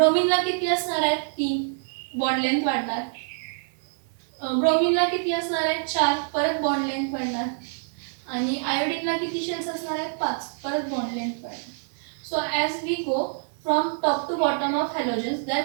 किती असणार आहेत, 3, बॉन्ड लेंथ वाढणार. ब्रोमीनला किती असणार आहेत, 4, परत बॉन्ड लेंथ वाढणार. आणि आयोडीनला किती शेल्स असणार आहेत, 5, परत बॉन्ड लेंथ वाढणार. So as we go from top to bottom of halogens,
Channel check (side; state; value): left; silent; 61 dB below the other